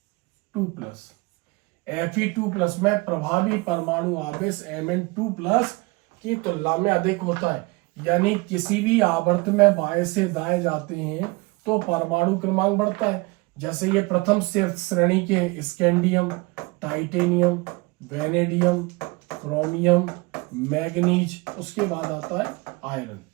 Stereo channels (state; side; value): quieter; left; 25.3 dB